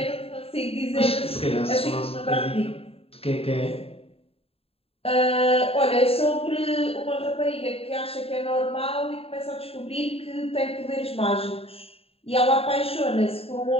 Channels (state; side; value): late; right; 0.28 ms